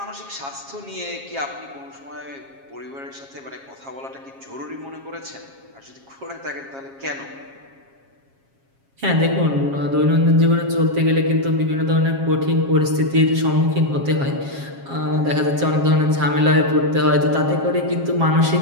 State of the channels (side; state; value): left; late; 7.4 ms